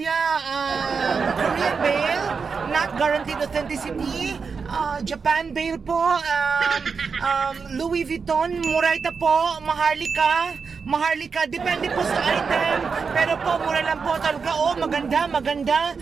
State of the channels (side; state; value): left; quieter; 5.4 dB